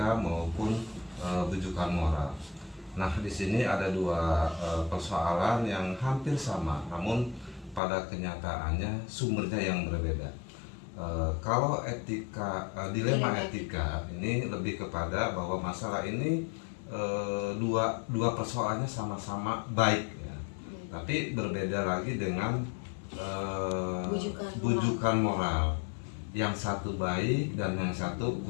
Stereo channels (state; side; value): drops out; right; at 7.8 s